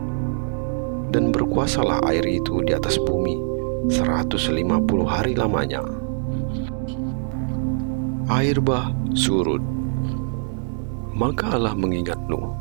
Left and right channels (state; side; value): silent; left; 58 dB below the other